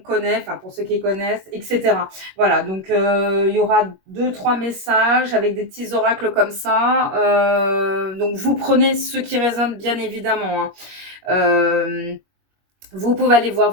enfin pour ceux qui connaissent, etc. Voilà, donc il y aura 2, 3 messages avec des petits oracles comme ça. Donc vous prenez ceux qui résonnent bien évidemment, hein. Vous pouvez aller voir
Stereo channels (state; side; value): late; left; 21 ms